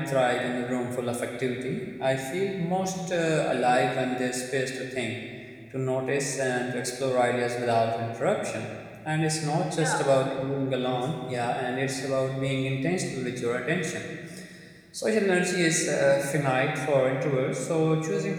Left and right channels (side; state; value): both; identical; correlation 1.00